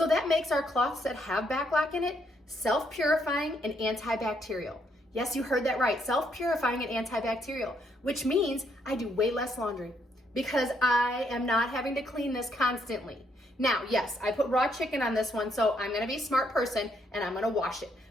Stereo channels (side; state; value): both; normal; correlation 0.73